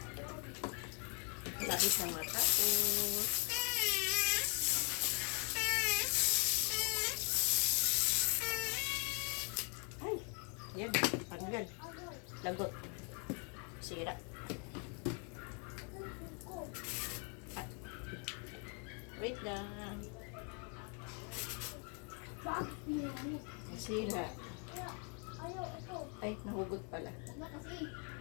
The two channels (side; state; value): right; quieter; 38.0 dB